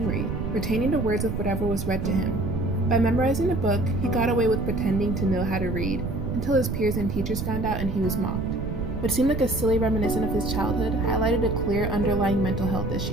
retaining the words of whatever was read to him. By memorizing a book, he got away with pretending to know how to read, until his peers and teachers found out and he was mocked. What seemed like a silly reminiscence of his childhood highlighted a clear underlying mental health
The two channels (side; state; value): right; noise; rumble, 4 dB below the sound